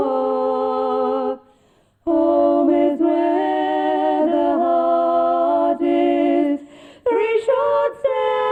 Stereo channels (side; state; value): both; identical; correlation 1.00